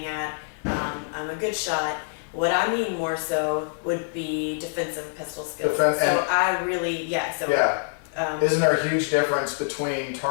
at. I'm a good shot, What I mean more so would be defensive pistol skills. So I really, isn't there a huge difference between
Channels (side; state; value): right; silent; digital silence